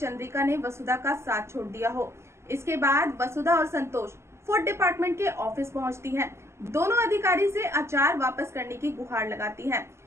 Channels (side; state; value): left; late; 0.13 ms